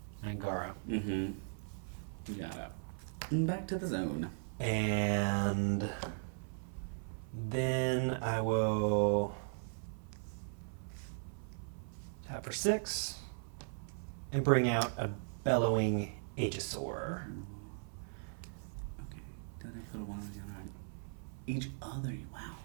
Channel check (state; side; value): silent; left; 52 dB below the other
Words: Angara. Mm-hmm. You got it. And back to the zone. And for 6. And bring out a bellowing Aegisaur. Okay. Then I put a 1 on the other. Each other. Wow.